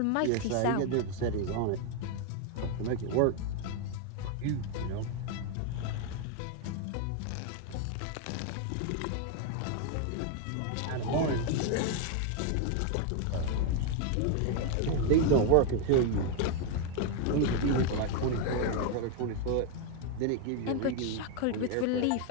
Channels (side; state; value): both; different; correlation 0.01